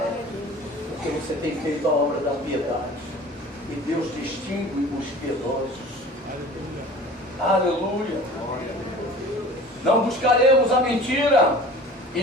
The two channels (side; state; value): both; normal; correlation 0.42